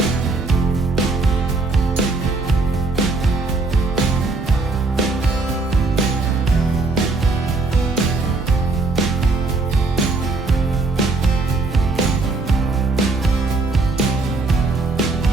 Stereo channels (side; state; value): left; quieter; 3.5 dB